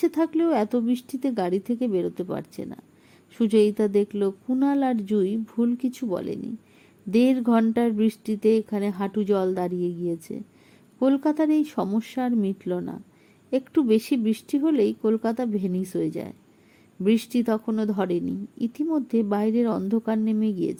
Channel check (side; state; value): both; identical; correlation 1.00